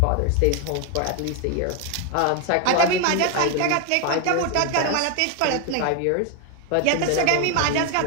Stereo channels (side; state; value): both; different; correlation 0.01